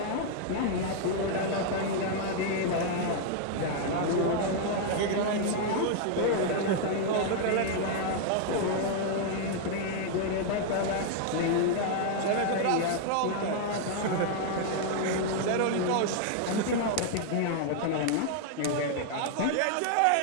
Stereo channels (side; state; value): both; different; correlation 0.00